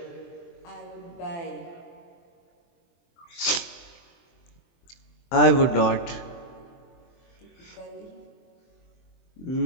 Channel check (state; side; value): late; right; 23 ms